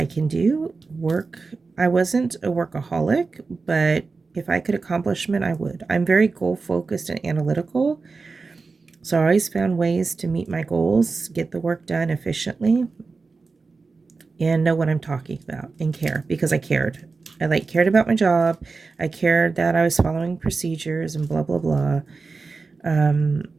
can do. I wasn't a workaholic, but if I could accomplish them, I would. I'm very goal focused and analytical. So I always found ways to meet my goals, get the work done efficiently, and know what I'm talking about and care, because I cared. I cared about my job. I cared that I was following procedures and blah, blah, blah.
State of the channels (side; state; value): left; quieter; 4.2 dB